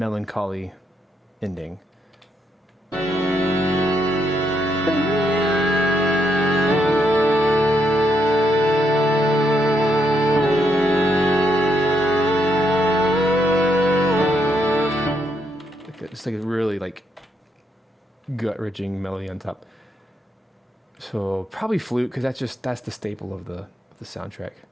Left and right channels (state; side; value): normal; both; correlation 0.76